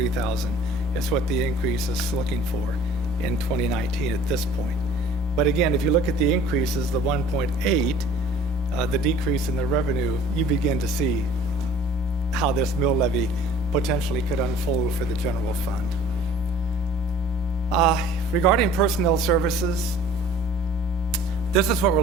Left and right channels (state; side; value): normal; both; correlation 0.49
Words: is what the increase is looking for in 2019 at this point. But again, if you look at the increases, the 1.8, the decrease in the revenue, you begin to see how this mill levy potentially could unfold for the general fund. Regarding personnel services, this is what we're